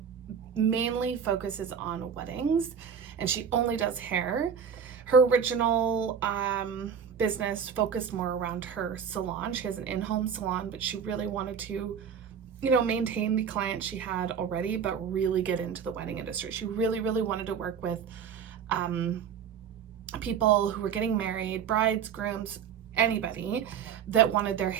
mainly focuses on weddings, and she only does hair. Her original business focused more around her salon. She has an in-home salon, but she really wanted to, maintain the clients she had already, but really get into the wedding industry. She really, really wanted to work with people who were getting married, brides, grooms, anybody that wanted their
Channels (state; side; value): quieter; left; 7.4 dB